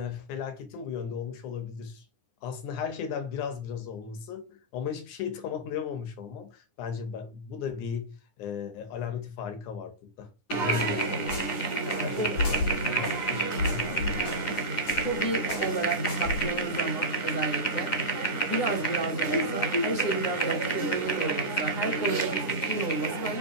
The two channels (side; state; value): right; late; 9.7 ms